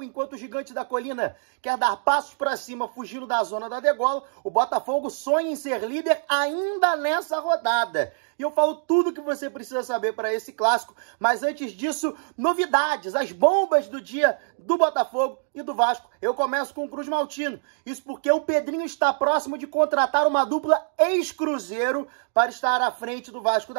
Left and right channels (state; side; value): silent; left; digital silence